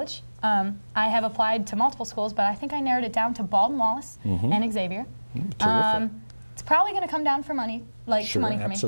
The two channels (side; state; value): both; inverted; correlation -1.00